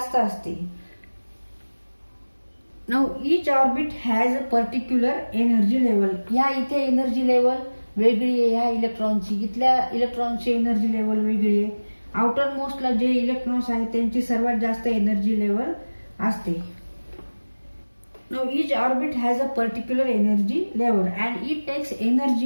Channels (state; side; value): inverted; both; correlation -1.00